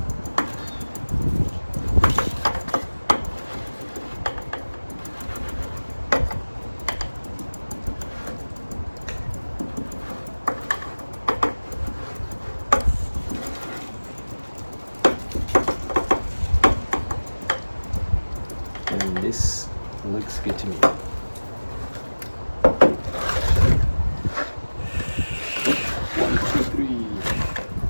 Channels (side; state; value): both; inverted; correlation -1.00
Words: And this looks good to me. One, two, three.